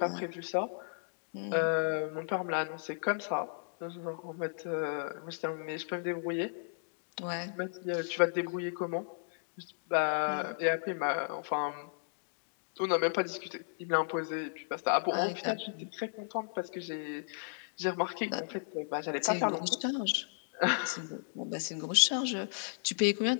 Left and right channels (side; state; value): right; silent; digital silence